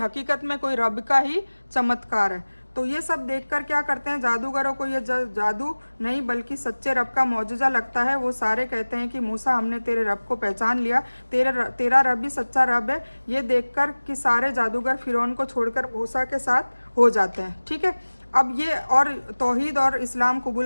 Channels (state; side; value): inverted; both; correlation -1.00